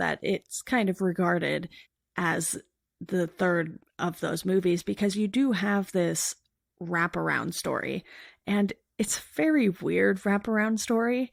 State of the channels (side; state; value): both; identical; correlation 1.00